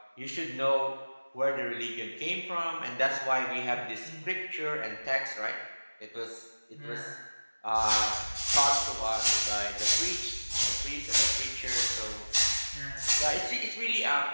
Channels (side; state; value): both; inverted; correlation -1.00